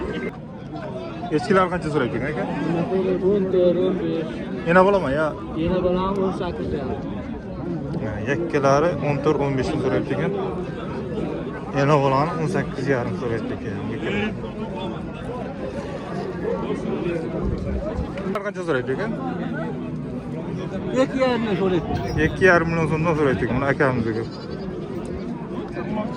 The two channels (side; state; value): both; identical; correlation 1.00